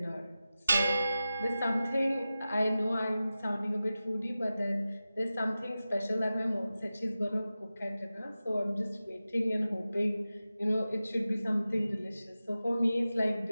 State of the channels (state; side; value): inverted; both; correlation -0.95